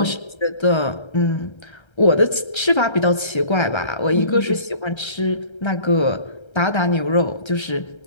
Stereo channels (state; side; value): late; right; 1.3 ms